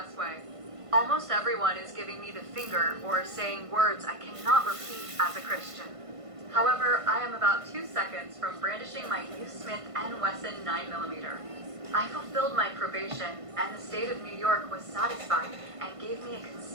Almost everyone is giving me the finger or saying words I cannot repeat as a Christian. However, I am about 2 seconds from brandishing my new Smith & Wesson 9mm. I fulfilled my probation, and the state of New York was satisfied and gave me a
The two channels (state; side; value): late; left; 1.5 ms